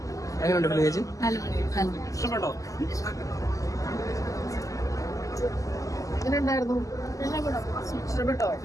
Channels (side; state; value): right; late; 0.16 ms